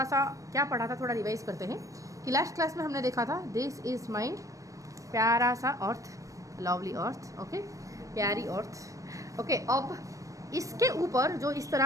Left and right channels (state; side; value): late; left; 0.16 ms